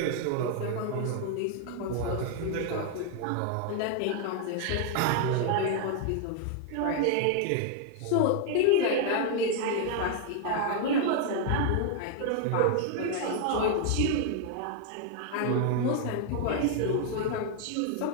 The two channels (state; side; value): different; both; correlation 0.00